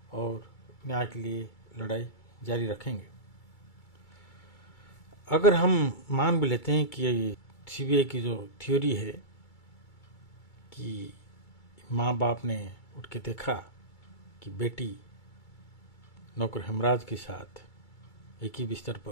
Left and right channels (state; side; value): late; right; 2.3 ms